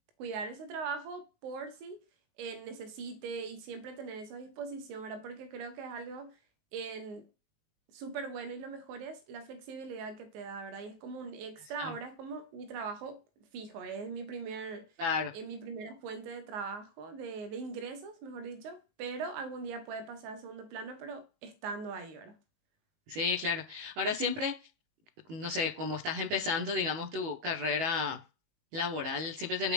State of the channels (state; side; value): late; left; 19 ms